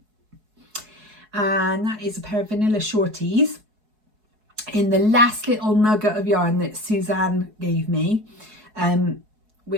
And that is a pair of vanilla shorties in the last little nugget of yarn that Suzanne gave me,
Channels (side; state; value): left; late; 4.7 ms